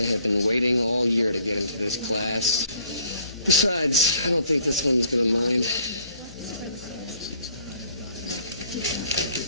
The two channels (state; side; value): inverted; both; correlation -0.60